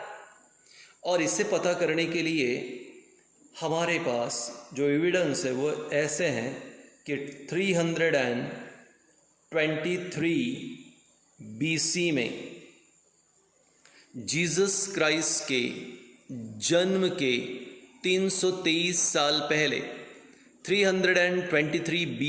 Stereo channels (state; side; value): identical; both; correlation 1.00